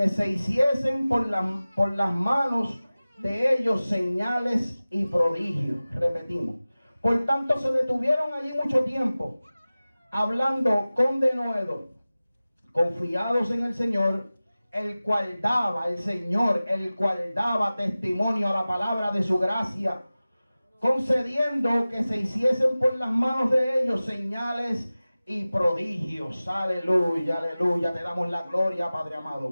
se hiciesen por las manos de ellos señales y prodigios. Repetimos. Por tanto, se detuvieron allí mucho tiempo, hablando con denuedo, confiados en el Señor, el cual daba testimonio a la palabra de su gracia, concediendo que se hiciesen por las manos de ellos señales y prodigios. Aleluya, aleluya. Te damos la gloria, Padre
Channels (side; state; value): both; inverted; correlation -0.97